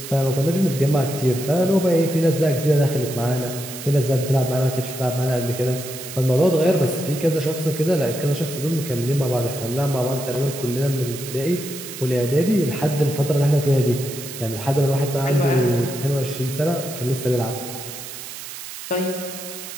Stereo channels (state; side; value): noise; right; hiss, 11 dB below the sound